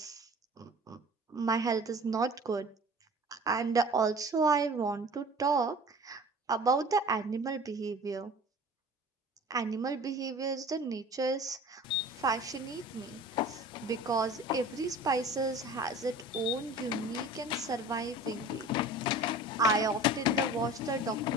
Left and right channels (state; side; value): normal; both; correlation 0.42